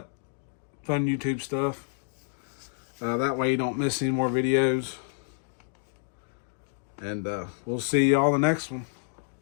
fun YouTube stuff. That way you don't miss any more videos. And we'll see y'all in the next one.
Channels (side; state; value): right; silent; digital silence